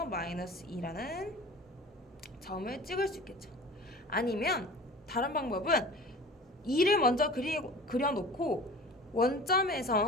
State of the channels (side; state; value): both; normal; correlation 0.40